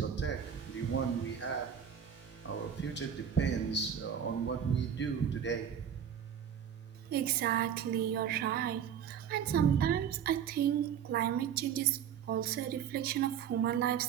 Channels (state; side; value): quieter; left; 8.4 dB